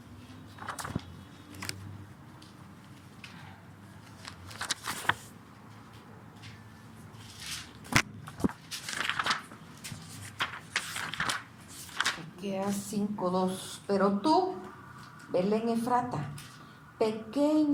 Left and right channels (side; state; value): both; identical; correlation 1.00